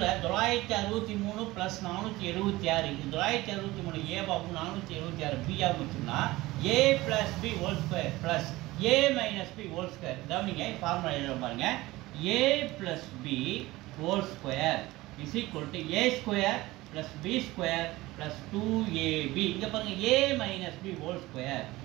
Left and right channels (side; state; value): left; quieter; 19.1 dB